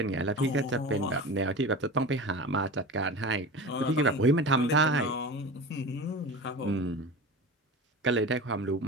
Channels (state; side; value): normal; both; correlation 0.31